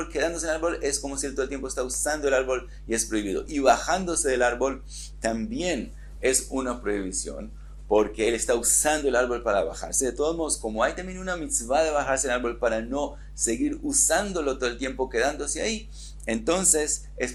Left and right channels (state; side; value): identical; both; correlation 1.00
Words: quedándose en el árbol, es como si él todo el tiempo está usando el árbol y es prohibido. Y bajándose del árbol también es una prohibición, porque él está usando el árbol para bajarse. De todos modos, como hay también una mitzvah de bajarse del árbol para no seguir usándolo todo el tiempo quedándose ahí, entonces es